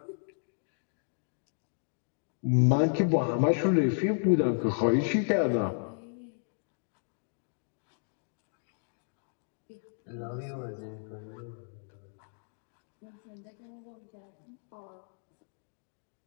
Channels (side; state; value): right; silent; digital silence